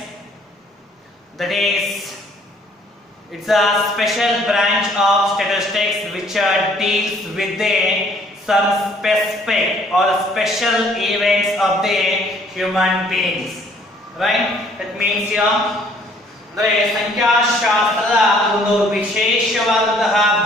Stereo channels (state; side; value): normal; both; correlation 0.60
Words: That is, it's a special branch of statistics which deals with some specific or special events of the human beings. Right? That means here. ಅಂದರೆ ಸಂಖ್ಯಾಶಾಸ್ತ್ರದ ಒಂದು ವಿಶೇಷವಾದಂತಹ